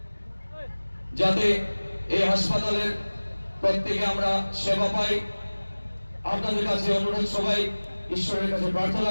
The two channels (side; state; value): both; inverted; correlation -1.00